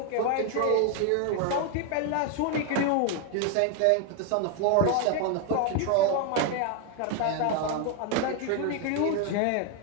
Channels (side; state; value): both; different; correlation 0.01